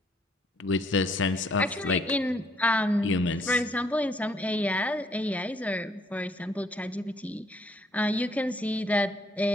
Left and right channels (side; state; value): both; normal; correlation 0.66